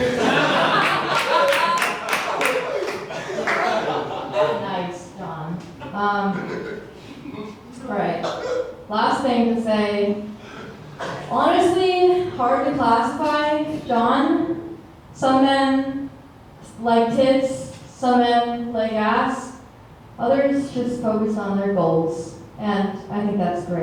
Nice, John. Alright. last thing to say. Honestly, hard to classify. John, some men like tits, some men like ass. Others just focus on their goals. And I think that's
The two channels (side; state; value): both; identical; correlation 1.00